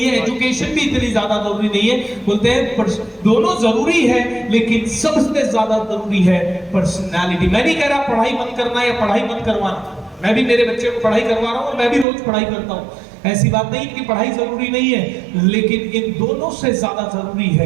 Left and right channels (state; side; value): drops out; left; at 12.1 s